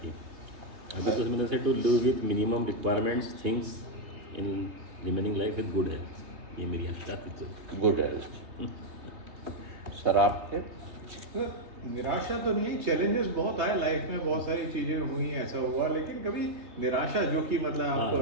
अभी तो मैंने से to live with minimum requirements things in remaining life with good health, ये मेरी आशा थी। तो गुड हेल्थ। सर आपके? निराशा तो नहीं है, चैलेंजेस बहुत आए लाइफ में, बहुत सारी चीजें हुई, ऐसा हुआ, लेकिन कभी निराशा जो कि मतलब आप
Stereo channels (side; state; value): left; late; 3.2 ms